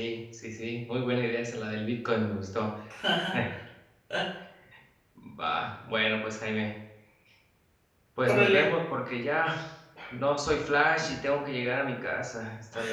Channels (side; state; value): both; identical; correlation 1.00